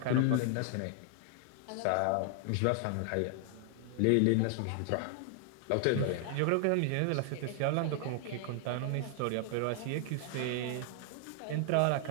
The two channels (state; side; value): different; both; correlation 0.00